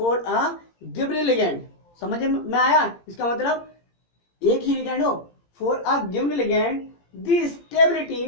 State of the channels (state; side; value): late; right; 17 ms